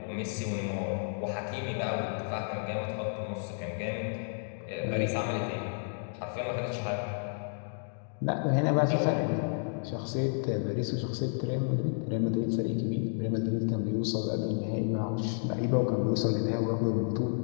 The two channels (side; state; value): right; silent; digital silence